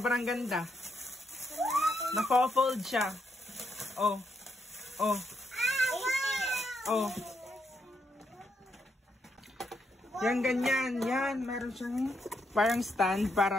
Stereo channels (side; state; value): both; normal; correlation 0.79